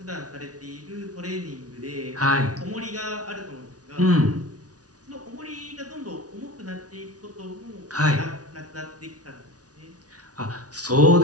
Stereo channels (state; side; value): late; left; 0.68 ms